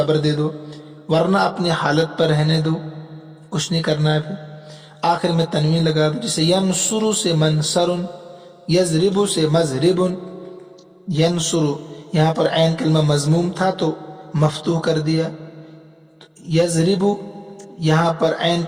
دے دو ورنہ اپنی حالت پر رہنے دو کچھ نہیں کرنا ہے. پھر آخر میں تنوین لگا دو. جیسے ینصر سے منصر. یضرب سے مضرب. ینصر یہاں پر عین کلمہ مضموم تھا تو مفتوح کر دیا. یضرب یہاں پر عین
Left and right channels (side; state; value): both; identical; correlation 1.00